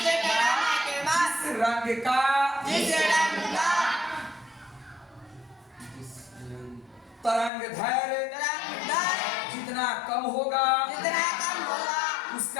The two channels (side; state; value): right; drops out; at 7.5 s